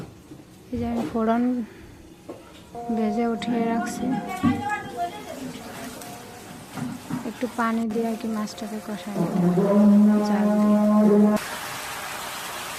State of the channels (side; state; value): both; identical; correlation 1.00